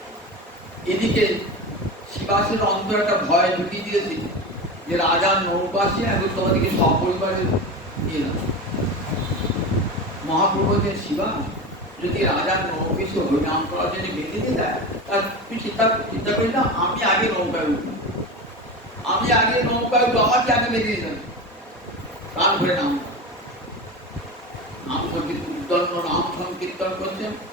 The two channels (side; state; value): both; normal; correlation 0.26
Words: এদিকে শিবা বিকাশের অন্তর একটা ভয় ঢুকিয়ে দিয়েছে যে রাজার নৌকা আসে এখন তোমাদেরকে সপরিবারে নিয়ে যাও। মহাপ্রভু যে শিবা যদি রাজার নৌকে সে হরিনাম করার জন্য বেঁধে দিয়ে দেয়, তার তুই চিন্তা করি না, আমি আগে নৌকায় উঠবো, আমি আগে নৌকায় উঠবো, আমাকে আগে বেঁধে দিয়ে দেবে। প্রাণ ভরে নাম সংকীর্তন করছেন।